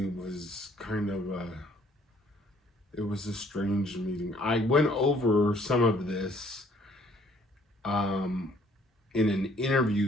was kind of it was a strange meeting. I went over some of this um, in an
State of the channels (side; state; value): both; normal; correlation 0.62